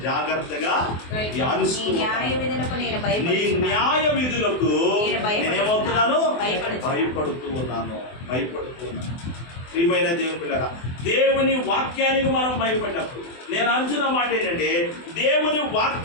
జాగ్రత్తగా ధ్యానిస్తున్నాను. నీ న్యాయ విధులకు నేనేమవుతున్నాను? భయపడుతూ ఉన్నాను. ప్రియమైన దేవుని పిల్లరా, దేవుని వాక్యానికి మనం భయపడినప్పుడు, నేను అంటున్న మాట ఏంటంటే, దేవుని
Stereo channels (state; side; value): late; right; 24 ms